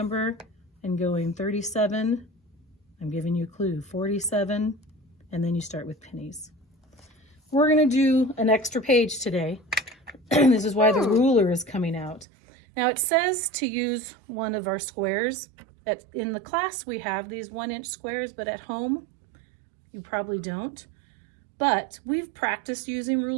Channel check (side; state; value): left; drops out; at 12.2 s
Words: and going 37, I'm giving you a clue, 47, and then you start with pennies. We're gonna do an extra page today. This is why the ruler is coming out. Now it says to use one of our squares. In the class we have these 1-inch squares, but at home you probably don't. But we've practiced using